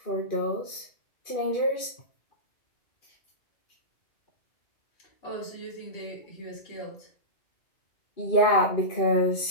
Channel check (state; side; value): late; right; 2.4 ms